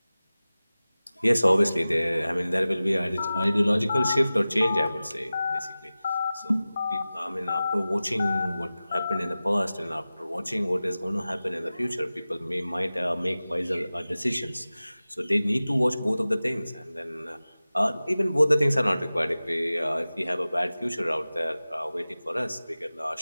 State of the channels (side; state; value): both; inverted; correlation -0.97